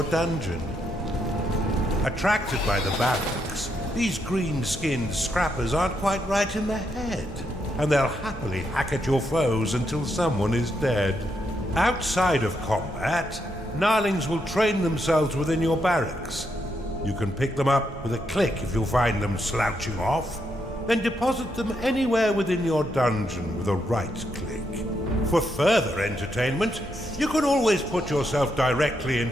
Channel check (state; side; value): normal; both; correlation 0.79